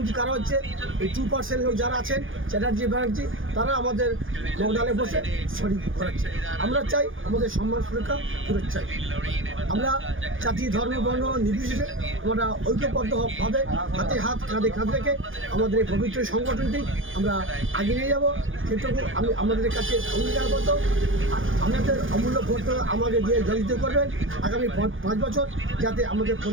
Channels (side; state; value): left; late; 0.58 ms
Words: কারা হচ্ছে? এই 2% লোক যারা আছেন, চ্যাটার্জি, ব্যানার্জি, তারা আমাদের লকডাউনে বসে শরীর করাচ্ছে। আমরা চাই আমাদের সম্মান, সুরক্ষা ফেরত চাই। আমরা জাতি, ধর্ম, বর্ণ নির্বিশেষে আমরা ঐক্যবদ্ধভাবে হাতে হাত, কাঁধে কাঁধ রেখে আমাদের এই পবিত্র সংগঠনটি আমরা আগে নিয়ে যাব। সেটুকু আমি আমাদের কাছে অঙ্গীকারবদ্ধ। আমাদের অমূল্য ভোট আমাদের দিয়ে জয়যুক্ত করবেন আগামী 5 বছর, যাতে আমাদের